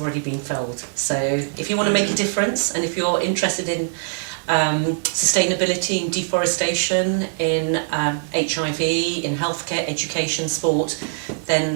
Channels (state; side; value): silent; left; digital silence